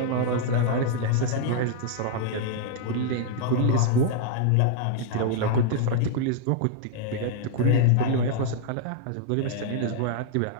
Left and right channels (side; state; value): both; different; correlation -0.01